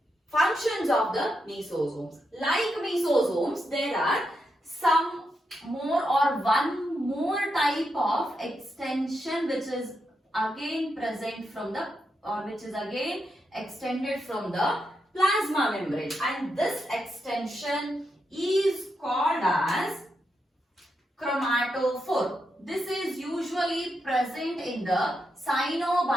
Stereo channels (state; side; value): normal; both; correlation 0.84